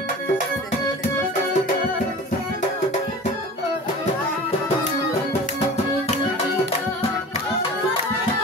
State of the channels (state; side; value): normal; both; correlation 0.38